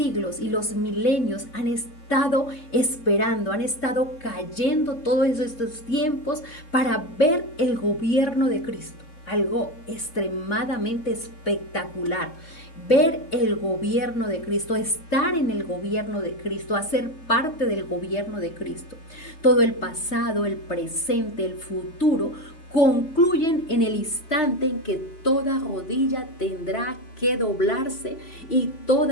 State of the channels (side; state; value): right; late; 3.3 ms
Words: y los milenios han estado esperando, han estado cayendo todos estos tiempos para ver el gobierno de Cristo. Algo extremadamente espectacular. Ver el gobierno de Cristo, estar en el gobierno de Cristo, hacer parte del gobierno de Cristo. Todo el pasado, el presente, el futuro concluyen en el instante en que toda rodilla tendrá que doblarse y